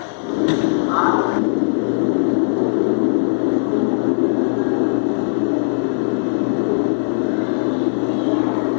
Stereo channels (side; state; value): right; silent; 59 dB below the other